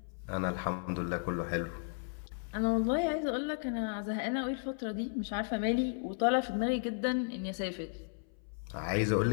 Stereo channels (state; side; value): silent; right; 55 dB below the other